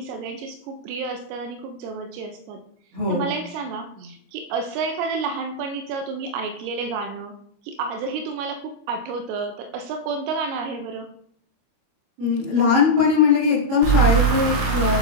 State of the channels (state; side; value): late; left; 25 ms